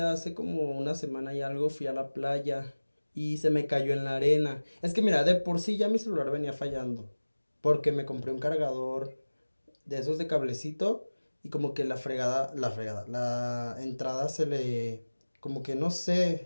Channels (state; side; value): inverted; both; correlation -1.00